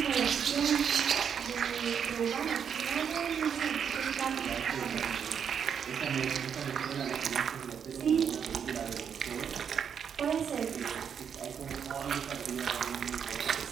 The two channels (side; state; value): left; quieter; 7.6 dB